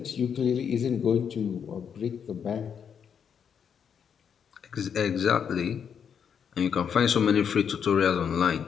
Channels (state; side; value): quieter; right; 7.5 dB